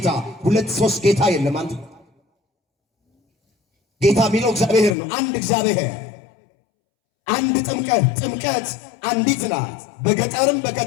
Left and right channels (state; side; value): drops out; right; at 5.0 s